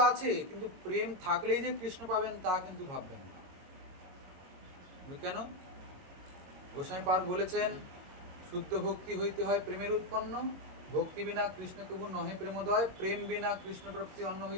আছে, কিন্তু প্রেম থাকলেই যে কৃষ্ণ পাবেন তা কিন্তু ভাববেন না। কেন? গোসাইপাদ বলেছেন শুদ্ধ ভক্তি হইতে হয় প্রেমের উৎপন্ন, ভক্তি বিনা কৃষ্ণ কবু নহে প্রেমোদয়, প্রেম বিনা কৃষ্ণ প্রাপ্তি অন্য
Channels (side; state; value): left; late; 22 ms